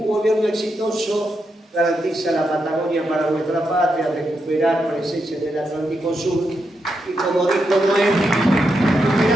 gobierno exitoso garantiza la Patagonia para nuestra patria, recuperar presencia en el Atlántico Sur. Y como dijo Noé,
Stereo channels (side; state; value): both; normal; correlation 0.84